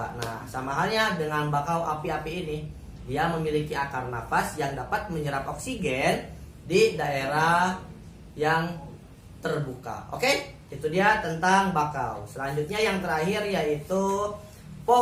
Nah, sama halnya dengan bakau api-api ini, dia memiliki akar nafas yang dapat menyerap oksigen di daerah yang terbuka. Oke? Itu dia tentang bakau. Selanjutnya yang terakhir yaitu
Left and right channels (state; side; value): identical; both; correlation 1.00